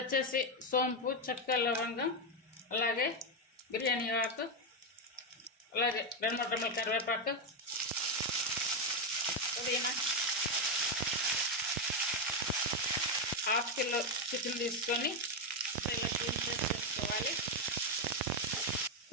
వచ్చేసి సోంపు, చెక్క, లవంగం, అలాగే బిర్యానీ ఆకు, అలాగే 2-3 రెమ్మల కరివేపాకు, పుదీనా, 1/2 కిలో చికెన్ తీసుకొని ఇలా క్లీన్ చేసి వేసుకోవాలి.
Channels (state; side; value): normal; both; correlation 0.06